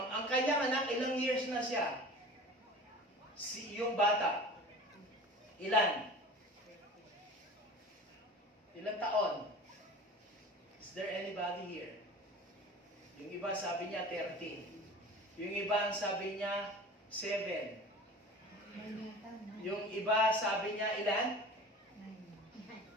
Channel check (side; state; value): both; normal; correlation 0.39